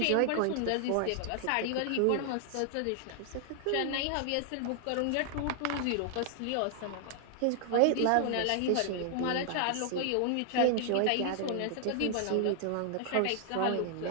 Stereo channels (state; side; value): different; both; correlation 0.00